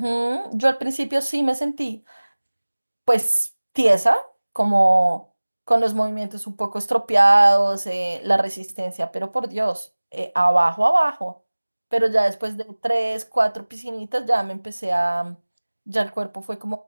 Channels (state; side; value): inverted; both; correlation -1.00